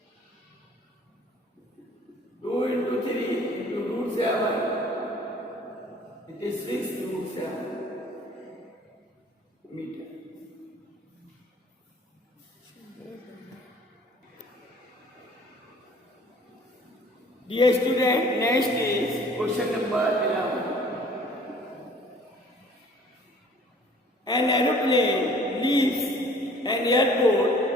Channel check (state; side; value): normal; both; correlation 0.53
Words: 2 into 3 into root 7, it is 6 root 7 meter. Dear student, next is question number 11. An aeroplane leaves an